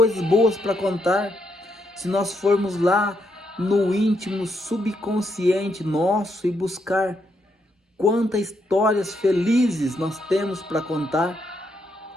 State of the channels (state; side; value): normal; both; correlation 0.78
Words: boas para contar. Se nós formos lá no íntimo subconsciente nosso e buscar quantas histórias felizes nós temos para contar,